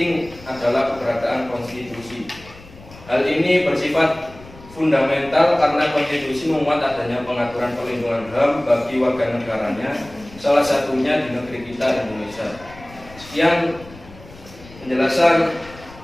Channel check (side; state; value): left; noise; rumble, 20 dB below the sound